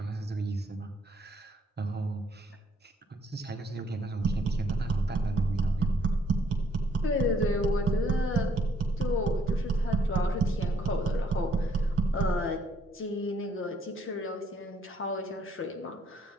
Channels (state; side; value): normal; both; correlation 0.67